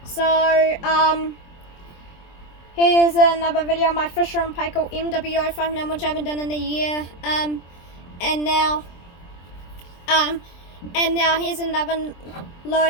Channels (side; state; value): right; late; 23 ms